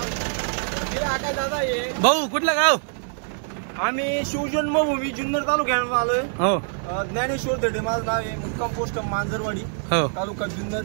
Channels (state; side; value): silent; left; 58 dB below the other